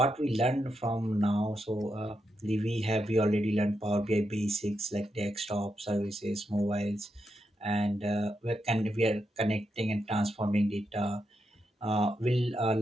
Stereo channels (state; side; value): normal; both; correlation 0.84